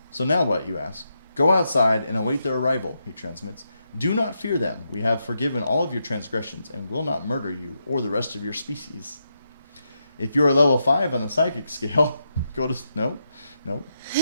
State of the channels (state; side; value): inverted; both; correlation -0.83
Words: So now what, you ask? Go outside and await their arrival, he transmits. Do not fear them. We have forgiven all of your transgressions and will not murder you or the rest of your species. If you are level 5 on the psychic scale, go to... Nope.